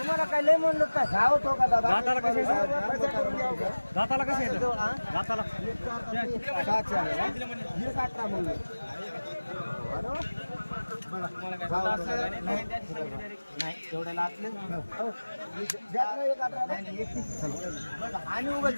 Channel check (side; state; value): both; inverted; correlation -1.00